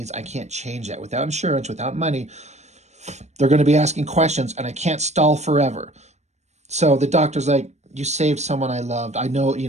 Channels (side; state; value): left; late; 0.33 ms